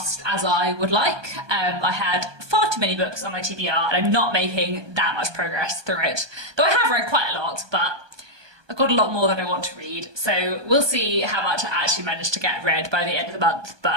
as I would like. I had far too many books on my TBR and I'm not making that much progress through it. Though I have read quite a lot, but I've got a lot more that I want to read, so we'll see how much I actually manage to get read by the end of the month,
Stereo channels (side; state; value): left; late; 1.2 ms